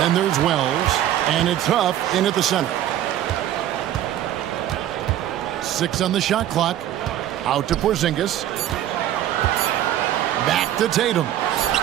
there's Wells, and it's Huff in at the center. 6 on the shot clock. Out to Porzingis. Back to Tatum.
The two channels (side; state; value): left; quieter; 12.1 dB